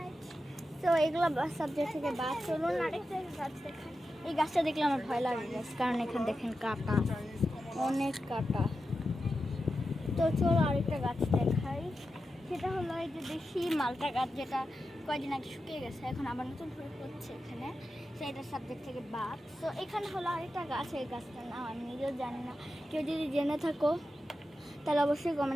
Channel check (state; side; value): normal; both; correlation 0.90